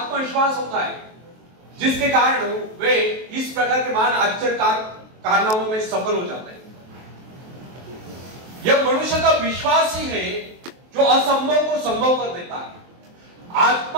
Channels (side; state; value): left; late; 23 ms